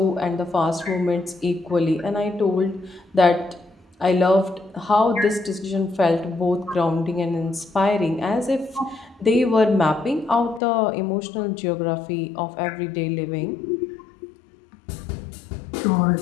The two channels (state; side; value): drops out; right; at 10.6 s